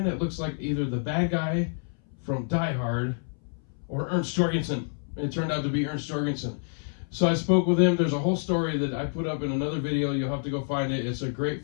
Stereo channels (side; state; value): right; silent; 59 dB below the other